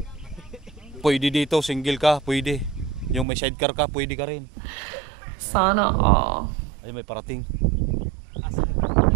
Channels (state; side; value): drops out; left; at 3.2 s